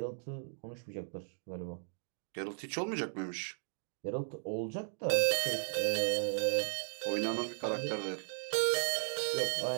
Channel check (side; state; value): left; silent; digital silence